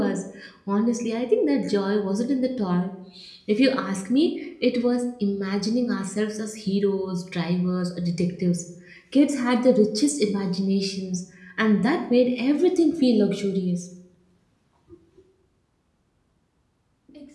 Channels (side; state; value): both; identical; correlation 1.00